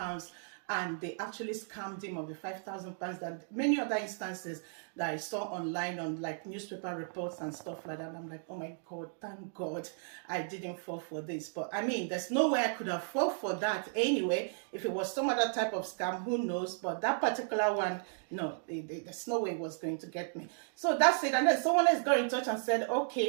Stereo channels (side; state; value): left; silent; digital silence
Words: And they actually scammed him of the £5,000. That many other instances that I saw online on like newspaper reports and stuff like that. And I'm like, oh my God, thank God I didn't fall for this. But I mean, there's no way I could have fallen for that anyway. If it was some other type of scam, who knows? But that particular one, no, there's no way it was going to get me. So that's it. And then someone else got in touch and said,